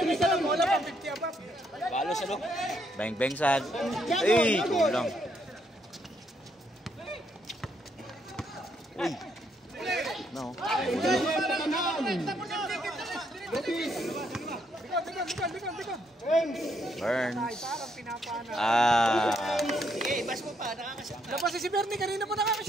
sa lang. Wala pa, 50 above. Balo sa loob. Bang bang sad. Ay, kulang. Uy. No. Lupis. likod. Burns. Parang pinapana. Labas si Bernie, kanina pa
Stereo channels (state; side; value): normal; both; correlation 0.74